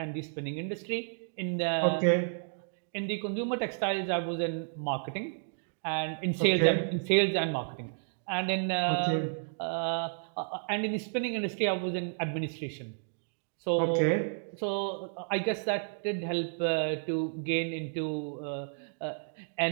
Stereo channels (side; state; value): left; silent; digital silence